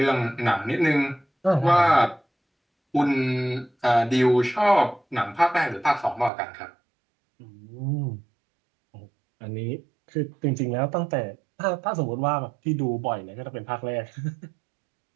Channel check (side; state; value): left; drops out; at 6.3 s